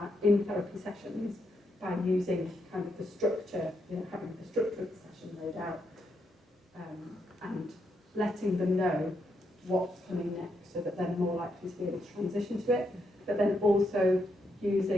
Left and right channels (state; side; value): normal; both; correlation 0.79